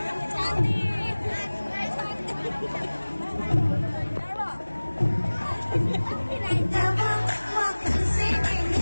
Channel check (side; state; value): both; inverted; correlation -1.00